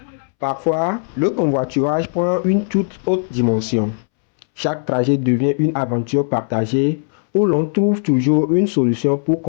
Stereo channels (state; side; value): silent; right; 67 dB below the other